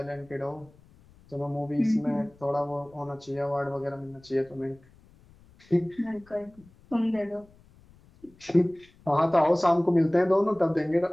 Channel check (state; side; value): noise; left; rumble, 27 dB below the sound